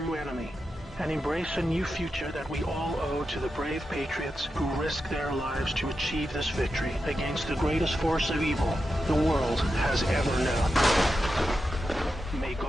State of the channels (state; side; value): normal; both; correlation 0.89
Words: enemy, and embrace a new future that we all owe to the brave patriots who risked their lives to achieve this victory against the greatest force of evil the world has ever known. May